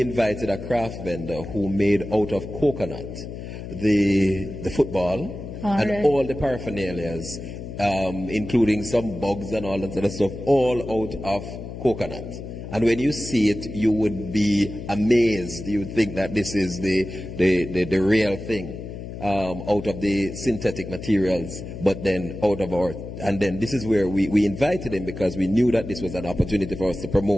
invited a craft vendor who made out of coconut the football and all the paraphernalias, including some bugs and all that sort of stuff, all out of coconut. And when you see it, you would be amazed. You would think that this is the real thing, out of the synthetic materials, but then out of our. And then this is where we invited him, because we knew that this was an opportunity for us to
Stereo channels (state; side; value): noise; left; hum, 10 dB below the sound